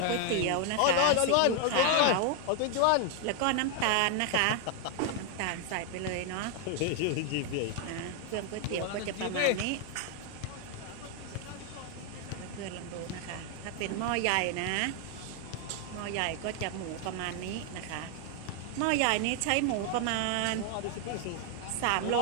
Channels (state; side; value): different; both; correlation 0.00